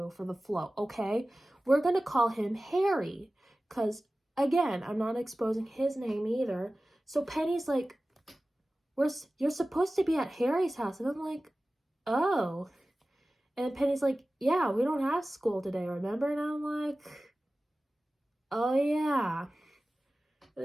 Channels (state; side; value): normal; both; correlation 0.96